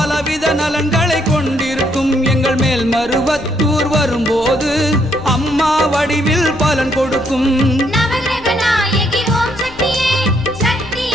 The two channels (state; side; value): noise; left; rumble, 20 dB below the sound